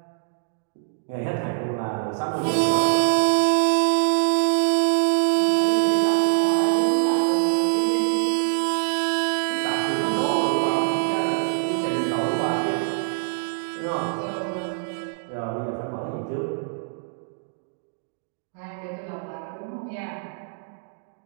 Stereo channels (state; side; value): silent; left; digital silence